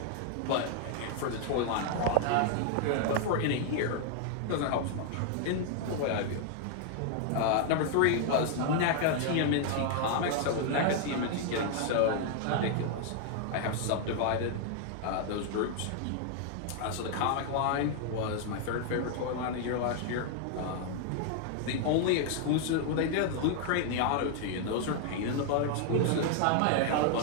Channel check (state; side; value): different; both; correlation 0.00